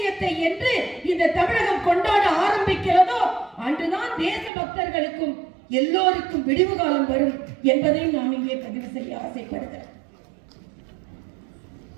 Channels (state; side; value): drops out; left; at 4.5 s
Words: என்று இந்த தமிழகம் கொண்டாட ஆரம்பிக்கிறதோ அன்றுதான் தேச பக்தர்களுக்கும் எல்லோருக்கும் விடிவு காலம் வரும் என்பதை நாம் இங்கே பதிவு செய்ய ஆசைப்படுகிறேன்.